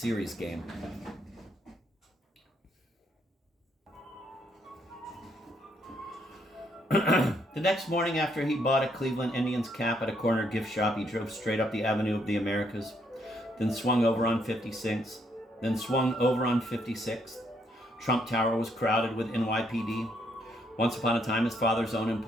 game. The next morning, after he bought a Cleveland Indians cap at a corner gift shop, he drove straight up the Avenue of the Americas, then swung over on 56th. Trump Tower was crowded with NYPD. Once upon a time, his father's own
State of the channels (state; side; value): normal; both; correlation 0.72